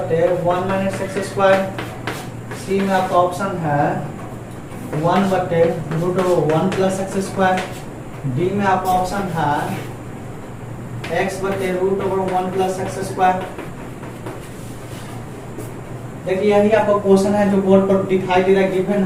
1 माइनस एक्स स्क्वायर, सी में आपका ऑप्शन है 1 बटे √1 प्लस एक्स स्क्वायर, डी में आपका ऑप्शन है x बटे √1 प्लस एक्स स्क्वायर। देखिए यही आपका क्वेश्चन है जो बोर्ड पर दिखाई दे रहा है, गिवन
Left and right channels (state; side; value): identical; both; correlation 1.00